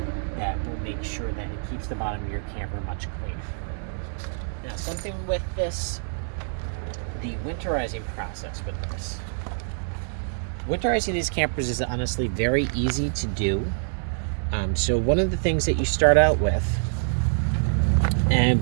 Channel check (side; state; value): left; silent; digital silence